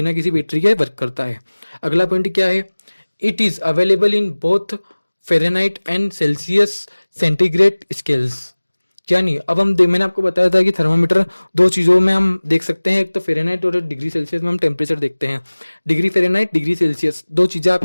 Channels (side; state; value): both; inverted; correlation -1.00